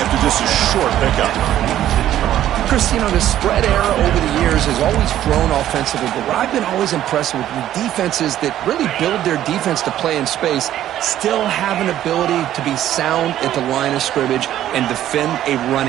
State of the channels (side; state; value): left; quieter; 12.2 dB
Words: just a short pickup. Chris, you know, the spread era over the years has always grown offensively, but what I've been always impressed with the defenses that really build their defense to play in space still have an ability to be sound at the line of scrimmage and defend a